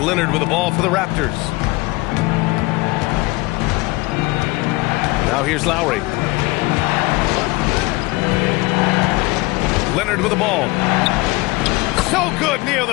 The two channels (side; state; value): right; quieter; 23.2 dB